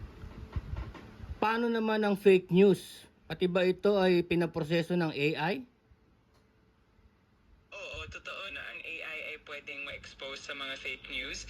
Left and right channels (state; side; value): identical; both; correlation 1.00